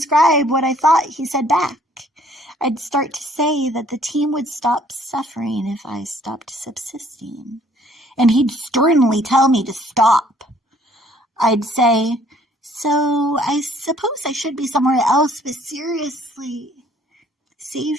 what I thought he said back. I'd start to say that the team would stop suffering if I stopped subsisting. And he'd sternly tell me to stop. I'd say, so I suppose I should be somewhere else, but seriously,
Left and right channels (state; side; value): normal; both; correlation 0.60